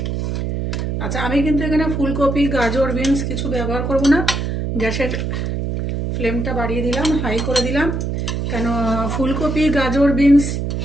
আচ্ছা, আমি কিন্তু এখানে ফুলকপি, গাজর, বিনস কিছু ব্যবহার করব না। গ্যাসের ফ্লেমটা বাড়িয়ে দিলাম, হাই করে দিলাম। কেন, ফুলকপি, গাজর, বিনস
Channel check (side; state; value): right; noise; hum, 2 dB below the sound